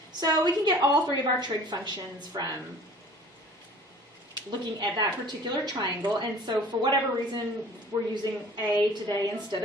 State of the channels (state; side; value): normal; both; correlation 0.47